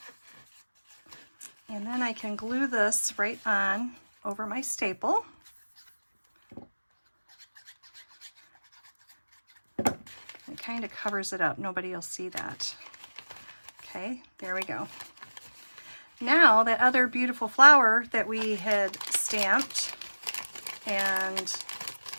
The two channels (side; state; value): both; inverted; correlation -1.00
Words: And then I can glue this right on over my staple. It kind of covers it up. Nobody will see that. Okay, there we go. Now that other beautiful flower that we had stamped and